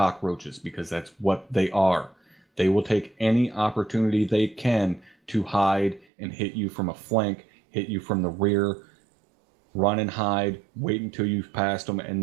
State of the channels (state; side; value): drops out; left; at 6.1 s